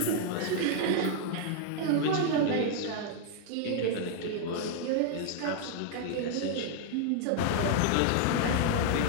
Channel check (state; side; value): different; both; correlation 0.00